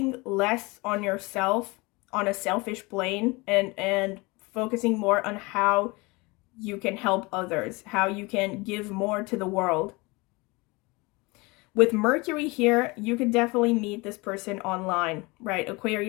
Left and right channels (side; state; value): right; quieter; 25.2 dB